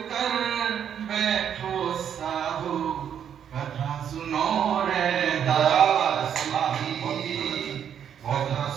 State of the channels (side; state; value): left; quieter; 8.7 dB